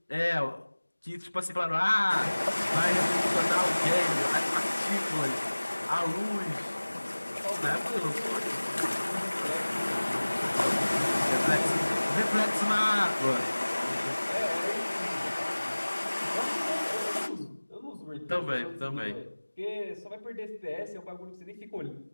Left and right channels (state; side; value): inverted; both; correlation -1.00